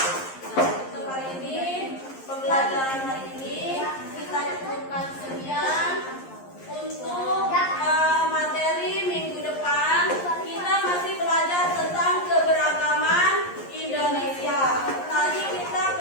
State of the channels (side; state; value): right; late; 11 ms